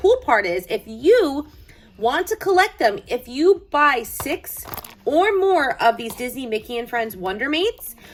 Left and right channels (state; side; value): identical; both; correlation 1.00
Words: part is if you want to collect them, if you buy 6 or more of these Disney Mickey and Friends Wonder Mates,